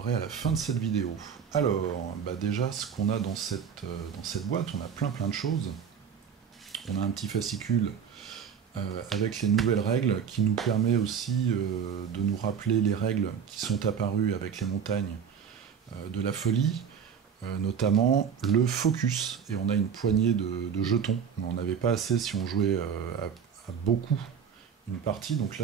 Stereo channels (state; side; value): quieter; left; 7.3 dB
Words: à la fin de cette vidéo. Alors, déjà ce qu'on a dans cette boîte, on a plein de choses. On a un petit fascicule avec les nouvelles règles, qui nous permet aussi de nous rappeler les règles qui sont apparues avec les montagnes de la folie. Notamment le focus, et on a une poignée de jetons. On n'en avait pas assez si on jouait à beaucoup une partie, donc là